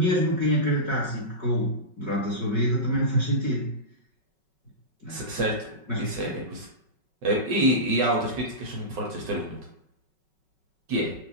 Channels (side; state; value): left; late; 5.3 ms